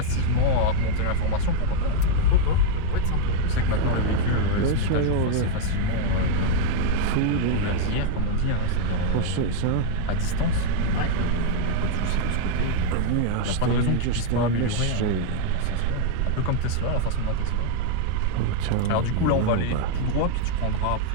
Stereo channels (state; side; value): different; both; correlation 0.00